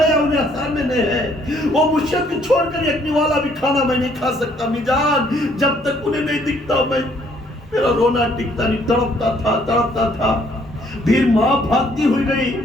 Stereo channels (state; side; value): normal; both; correlation 0.64